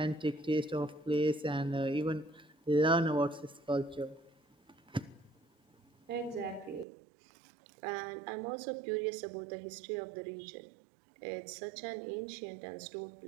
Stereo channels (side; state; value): left; drops out; at 6.9 s